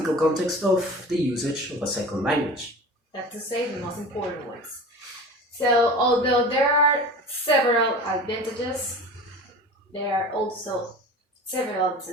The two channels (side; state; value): both; normal; correlation 0.36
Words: context of the usage of a second language. That's to say the most important ones. So although there are several advantages, there are also several